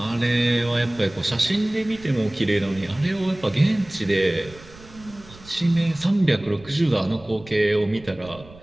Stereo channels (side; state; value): right; noise; rumble, 21 dB below the sound